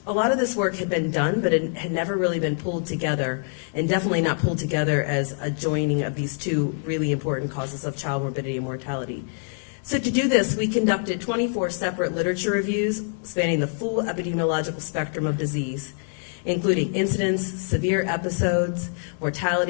A lot of this work had been done, but it had never really been pulled together, and definitely not pulled together as a joining of these two really important causes of child morbidity and mortality. So to do this, we conducted 24 separate literature reviews spanning the full epidemiological spectrum of disease, including incidence, severe episodes,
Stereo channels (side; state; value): right; silent; 62 dB below the other